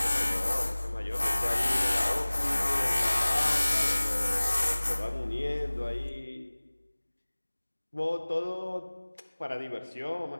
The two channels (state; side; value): inverted; both; correlation -1.00